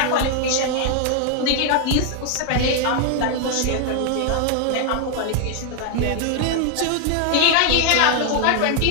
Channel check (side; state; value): both; different; correlation 0.00